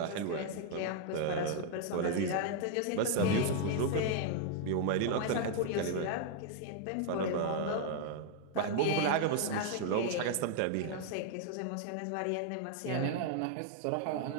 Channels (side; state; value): both; different; correlation 0.00